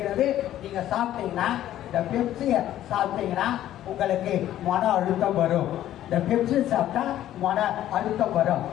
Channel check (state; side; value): quieter; right; 12.6 dB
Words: நீங்க சாப்பிட்டீங்கன்னா, இந்த பெப்சியை சாப்பிட்டீங்கன்னா உங்களுக்கு மன அழுத்தம் வரும். இந்த பெப்சி சாப்பிட்டா மன அழுத்தம் வரும்.